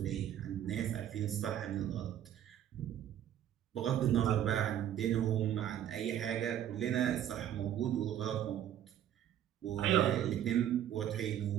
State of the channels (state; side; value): quieter; left; 10.8 dB